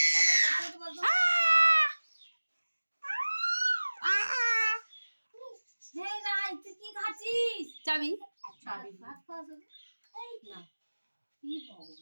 কি খাচ্ছিস? চাবি ভাত খাওয়া না কি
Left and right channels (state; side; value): inverted; both; correlation -1.00